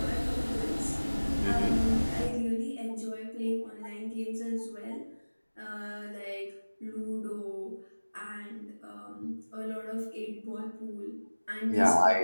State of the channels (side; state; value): both; inverted; correlation -1.00